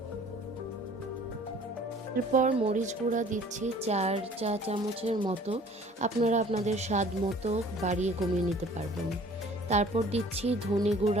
এরপর মরিচ গুঁড়া দিচ্ছি 4 চা চামচের মতো, আপনারা আপনাদের স্বাদ মতো বাড়িয়ে কমিয়ে নিতে পারবেন। তারপর দিচ্ছি ধনে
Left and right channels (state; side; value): normal; both; correlation 0.51